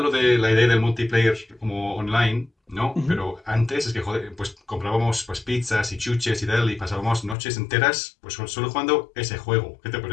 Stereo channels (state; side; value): drops out; right; at 7.4 s